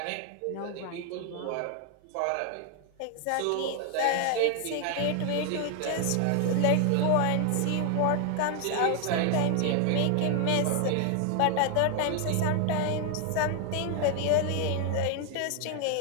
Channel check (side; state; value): both; different; correlation 0.00